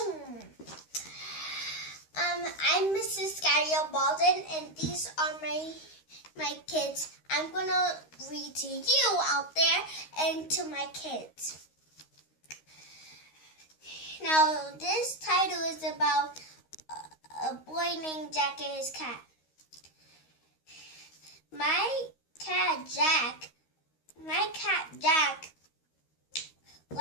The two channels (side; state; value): right; late; 13 ms